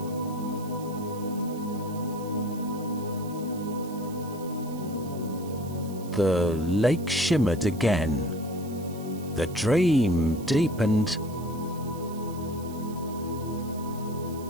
The lake shimmered again. The dream deepened.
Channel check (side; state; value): right; noise; hiss, 20 dB below the sound